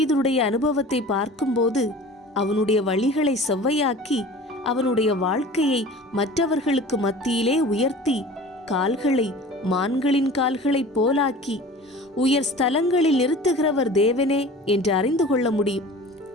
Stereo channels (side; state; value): both; normal; correlation 0.41